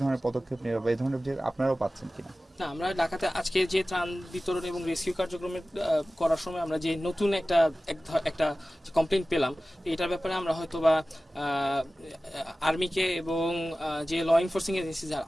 ধরনের পদক্ষেপ নেবে বা এই ধরনের যে আপনারাও পাচ্ছেন কিনা? না, আমরা ঢাকাতে আজকে যে ত্রাণ বিতরণ এবং রেস্কিউ কার্যক্রমের করার সময় আমরা যে নতুন একটা কমপ্লেন পেলাম, এটার ব্যাপারে আমরা হয়তো বা আর্মিকে এবং যে ল এনফোর্সিং এজেন্সি যারা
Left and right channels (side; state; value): both; normal; correlation 0.96